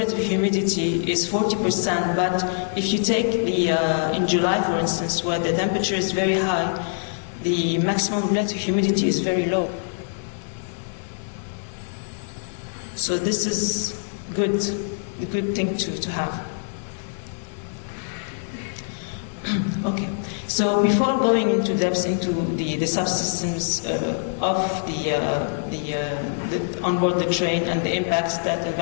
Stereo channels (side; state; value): right; silent; 63 dB below the other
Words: humidity is 40%, but if you take the, in July, for instance, where the temperature is very high, the maximum relative humidity is very low. So this is good, a good thing to have. Okay, so before going into depth into the subsystems of the on board the train and the impacts that